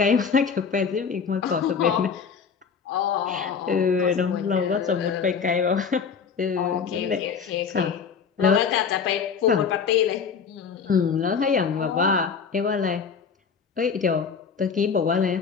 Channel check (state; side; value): quieter; right; 6.2 dB